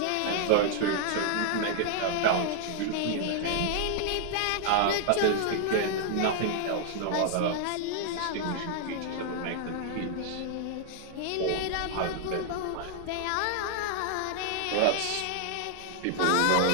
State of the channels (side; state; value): both; different; correlation -0.01